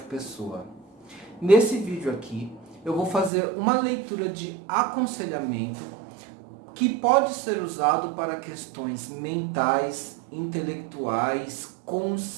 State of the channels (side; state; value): left; drops out; at 3.3 s